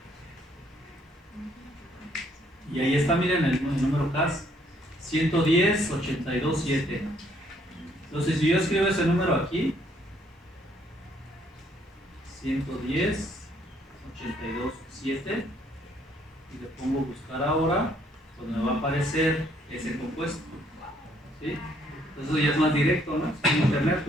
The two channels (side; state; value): both; normal; correlation 0.67